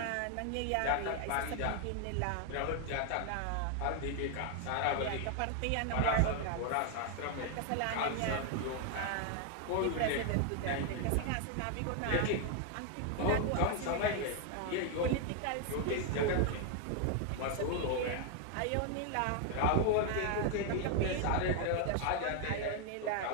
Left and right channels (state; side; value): different; both; correlation 0.00